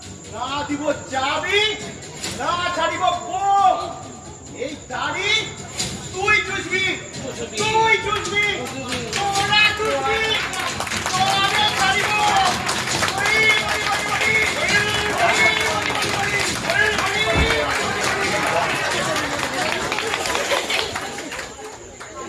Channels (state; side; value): identical; both; correlation 1.00